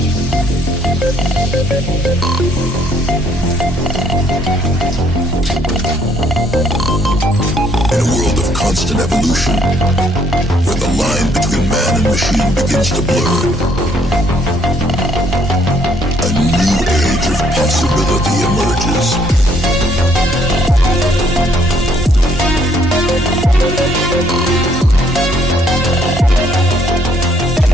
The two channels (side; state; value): both; normal; correlation 0.67